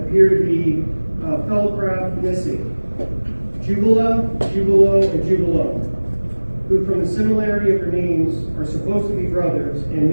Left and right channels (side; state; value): both; inverted; correlation -1.00